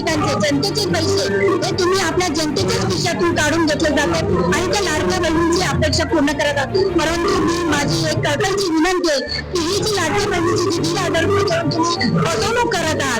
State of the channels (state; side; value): identical; both; correlation 1.00